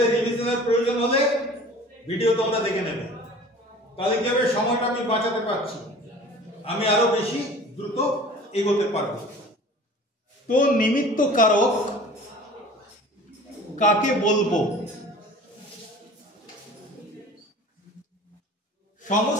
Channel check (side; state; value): both; normal; correlation 0.44